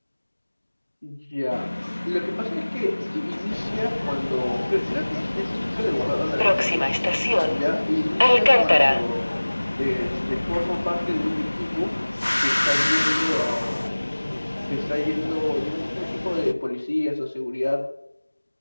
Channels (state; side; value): inverted; both; correlation -1.00